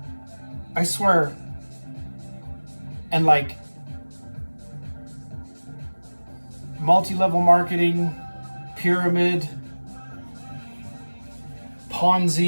I swear. And like multi-level marketing, pyramid,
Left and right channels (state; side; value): inverted; both; correlation -1.00